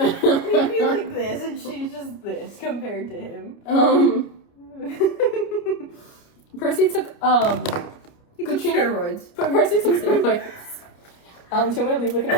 be like this, and she's just this compared to him. Percy took He took steroids. But Percy took steroids. Do you want me to leave like an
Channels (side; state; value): right; late; 29 ms